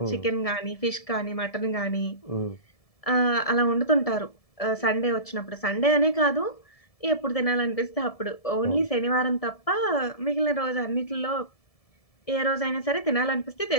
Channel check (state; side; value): late; right; 1.7 ms